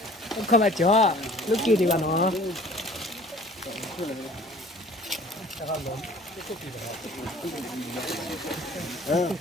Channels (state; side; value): normal; both; correlation 0.49